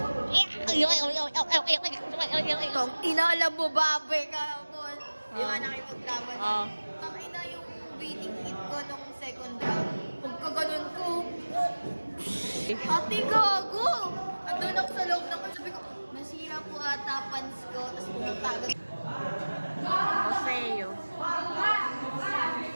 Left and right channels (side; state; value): both; inverted; correlation -1.00